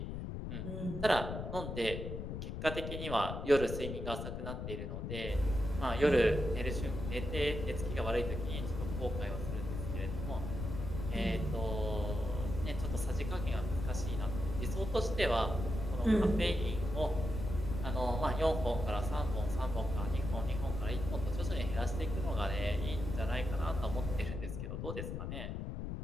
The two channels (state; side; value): noise; left; rumble, 5 dB below the sound